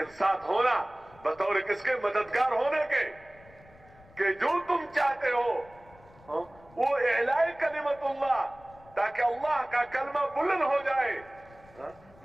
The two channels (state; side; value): noise; left; rumble, 25 dB below the sound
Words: ساتھ ہونا بطور کس کے؟ مددگار ہونے کے، کہ جو تم چاہتے ہو وہ اعلاء کلمت اللہ، تاکہ اللہ کا کلمہ بلند ہو جائے۔